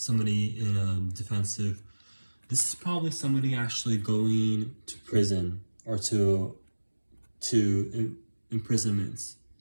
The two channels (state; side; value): inverted; both; correlation -1.00